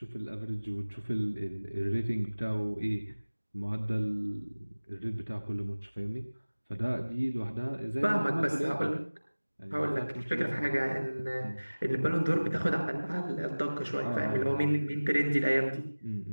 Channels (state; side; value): inverted; both; correlation -1.00